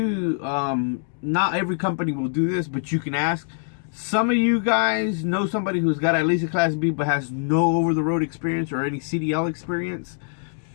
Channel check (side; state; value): right; silent; digital silence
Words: not every company will do this, but you can ask. Some of you guys know somebody who's got at least a Class B but has no over-the-road experience or any CDL experience,